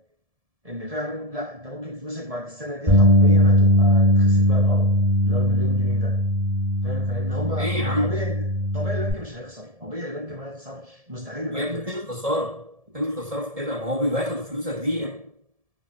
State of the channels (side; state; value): left; late; 1.7 ms